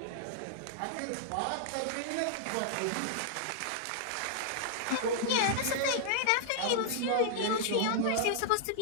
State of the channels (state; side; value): different; both; correlation -0.01